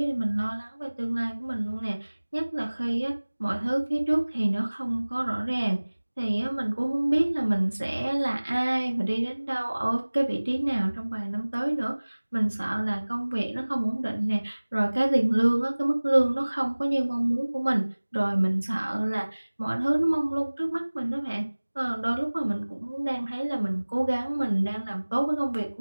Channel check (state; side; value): inverted; both; correlation -1.00